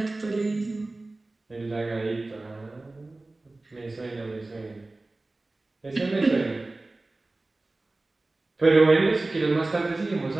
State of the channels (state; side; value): quieter; left; 3.0 dB